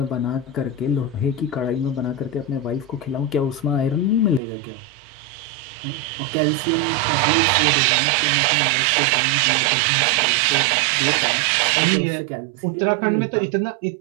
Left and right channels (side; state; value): left; drops out; at 4.4 s